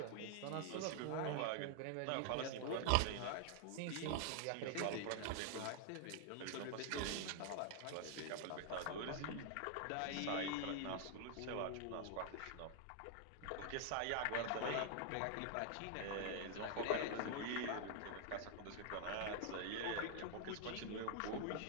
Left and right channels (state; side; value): different; both; correlation 0.00